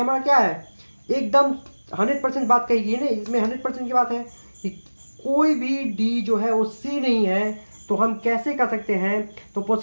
क्या है, एकदम 100% बात कही गई है ना, इसमें 100% की बात है कि कोई भी डी जो है वो सी नहीं है, तो हम कैसे कर सकते हैं, तो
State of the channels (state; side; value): inverted; both; correlation -1.00